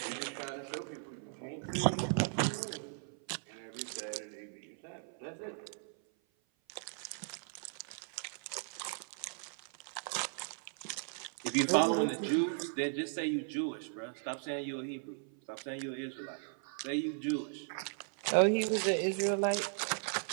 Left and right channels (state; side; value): silent; left; 53 dB below the other